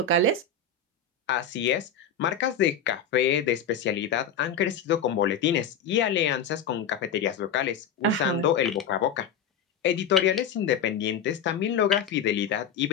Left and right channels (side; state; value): right; quieter; 6.4 dB